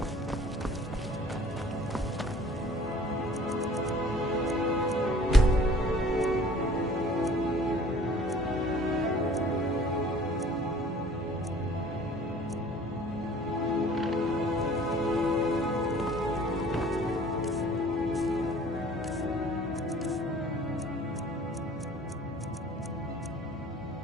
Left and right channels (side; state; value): both; normal; correlation 0.51